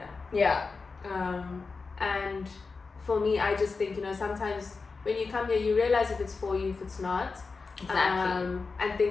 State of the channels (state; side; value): quieter; right; 4.4 dB